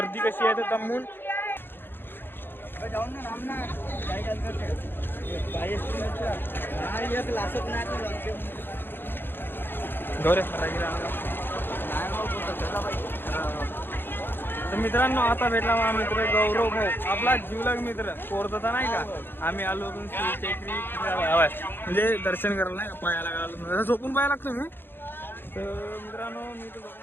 कशी आहे तर दमून तर मित्रांनो, आता भेटला माझा मित्र गौरव भाऊ, आपला जीवलग मित्र कोरदाचा नाही का. आम्ही आलो होतो म्हणजे दर्शन करायला नाही का, पायाला लागलो, झोपून पाया लागतो मी. तर मित्रांनो, मी तर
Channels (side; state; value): right; late; 0.10 ms